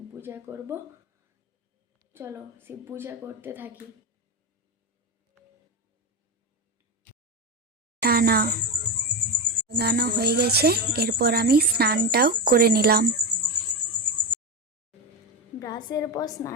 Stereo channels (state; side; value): normal; both; correlation 0.16